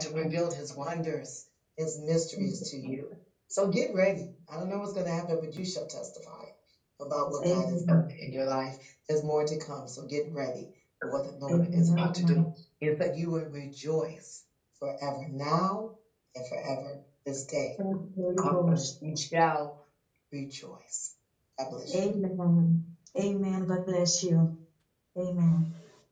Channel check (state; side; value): identical; both; correlation 1.00